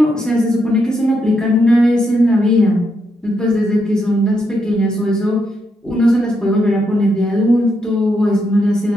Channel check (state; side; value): normal; both; correlation 0.80